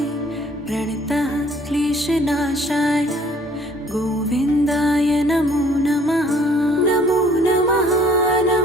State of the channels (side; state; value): both; normal; correlation 0.58